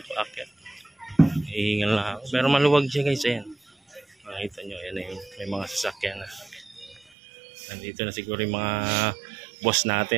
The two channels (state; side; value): drops out; left; at 7.1 s